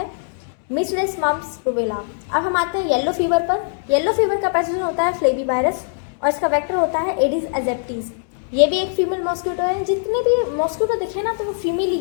मीसल्स मम्प्स रुबेला। अब हम आते हैं येलो फीवर पर। येलो फीवर का पैथोजन होता है फ्लेवी वायरस और इसका वेक्टर होता है एडिस एजेप्टिस। ये भी एक फीमेल मॉस्किटो है। जितने भी मॉस्किटो दिखे ना तो वो फीमेल ही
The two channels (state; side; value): silent; right; 63 dB below the other